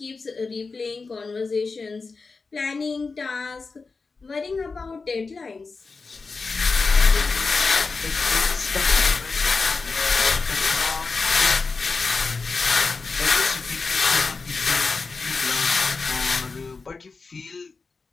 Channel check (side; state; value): right; quieter; 4.3 dB